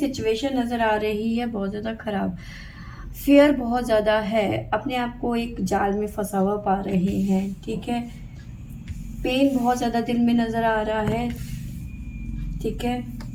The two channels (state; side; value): identical; both; correlation 1.00